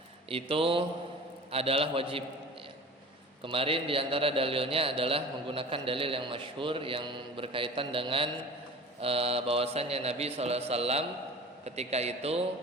itu adalah wajib ya. Kemarin di antara dalilnya adalah menggunakan dalil yang masyhur yang berkaitan dengan bahwasanya Nabi SAW ketika itu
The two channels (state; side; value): normal; both; correlation 0.39